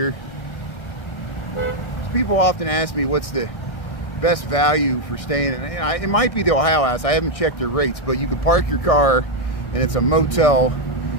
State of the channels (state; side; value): late; right; 1.6 ms